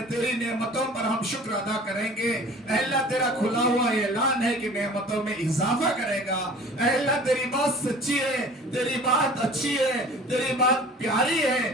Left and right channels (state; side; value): normal; both; correlation 0.45